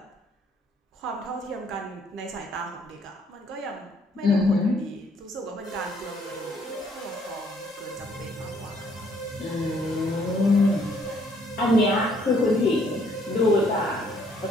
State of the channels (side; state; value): both; normal; correlation 0.65